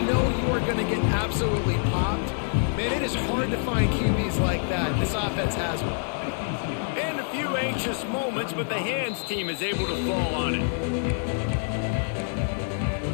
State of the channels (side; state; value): right; silent; 60 dB below the other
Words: know you are going to get absolutely popped, man, it is hard to find QBs like that. This offense has one. And a few anxious moments, but the hands team is able to fall on it.